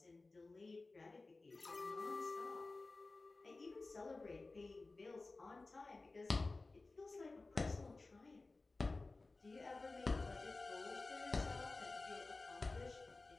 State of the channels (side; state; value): right; quieter; 3.4 dB